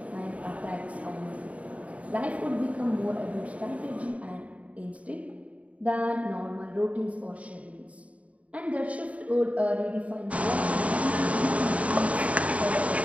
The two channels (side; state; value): left; late; 0.067 ms